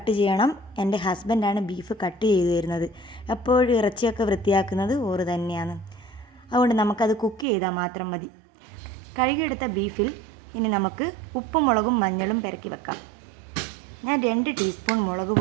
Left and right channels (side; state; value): left; drops out; at 7.5 s